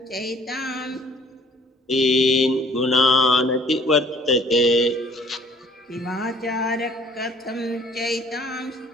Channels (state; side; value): normal; both; correlation 0.56